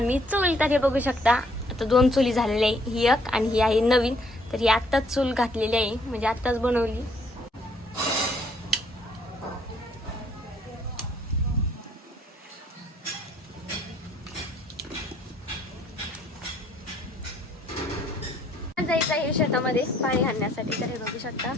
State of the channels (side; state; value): both; normal; correlation 0.65